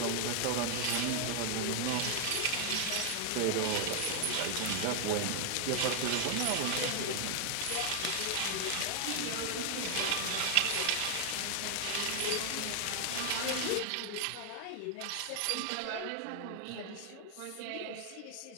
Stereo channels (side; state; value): both; different; correlation 0.00